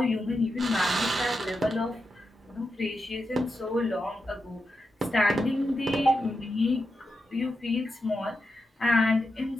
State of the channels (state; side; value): normal; both; correlation 0.88